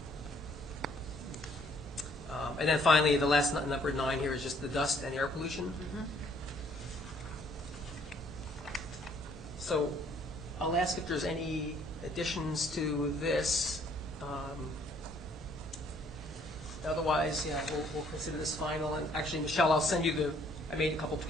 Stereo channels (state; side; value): normal; both; correlation 0.63